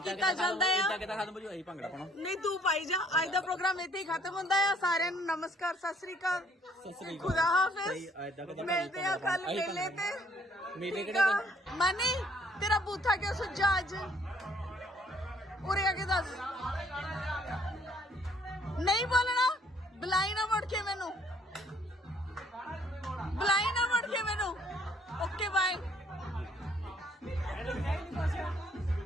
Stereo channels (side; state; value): both; normal; correlation 0.63